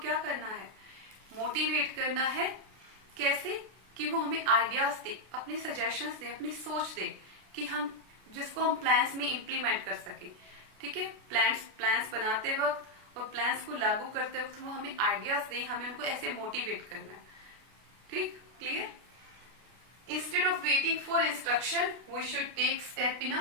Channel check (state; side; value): late; left; 33 ms